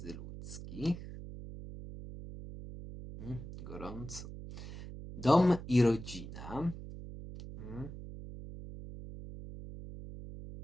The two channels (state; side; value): noise; right; hum, 11 dB below the sound